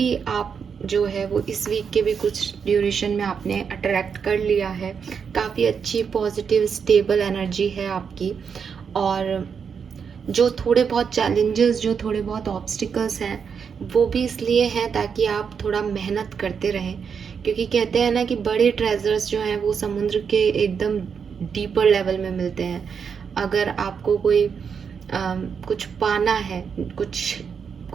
आप जो है वो इस वीक के भी कुछ ड्यूरेशन में आपने अट्रैक्ट कर लिया है। काफ़ी अच्छी पॉजिटिव स्टेबल एनर्जी है आपकी। और जो थोड़े बहुत चैलेंजेस, जो थोड़े बहुत ऑब्स्टिकल्स हैं, वो भी इसलिए हैं ताकि आप थोड़ा मेहनत करते रहें। क्योंकि कहते हैं ना कि बड़े ट्रेजर्स जो हैं वो समुद्र के एकदम डीपर लेवल में मिलते हैं। अगर आपको कोई कुछ पाना है,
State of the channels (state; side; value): quieter; left; 6.5 dB